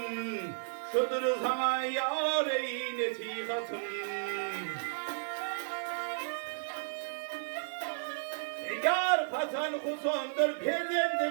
Şudur sana yareyi netihatım. Yar patan husondur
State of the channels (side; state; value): left; silent; digital silence